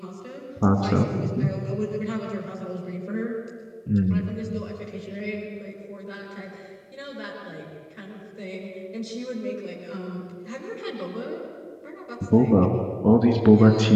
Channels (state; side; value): identical; both; correlation 1.00